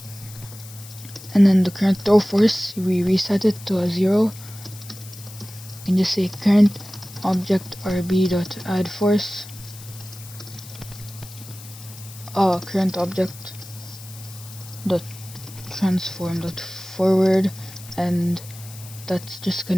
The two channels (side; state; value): left; noise; hiss, 17 dB below the sound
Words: And then the current throw force, we reset it to a 0. You can just say current object RB.add force. Current object dot transform dot forward, and that's just going